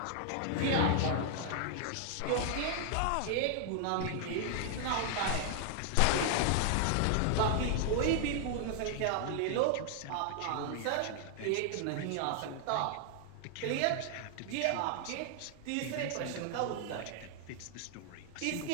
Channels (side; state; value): both; different; correlation 0.00